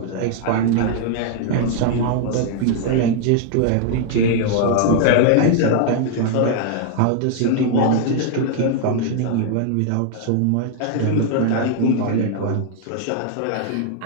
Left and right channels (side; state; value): both; different; correlation 0.00